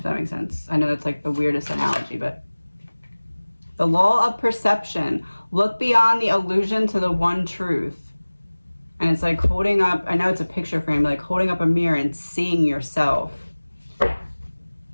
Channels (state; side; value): inverted; both; correlation -1.00